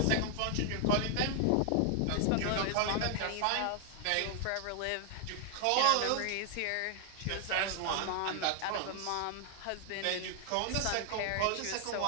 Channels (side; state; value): both; different; correlation 0.00